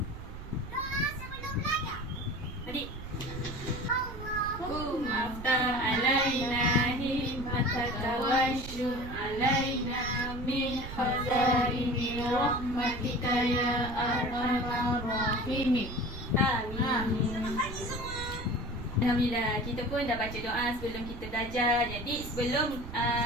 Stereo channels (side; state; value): right; noise; rumble, 10 dB below the sound